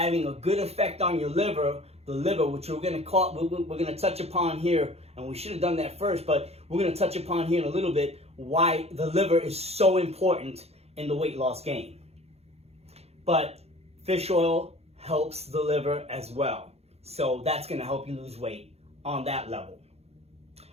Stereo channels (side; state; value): left; late; 0.30 ms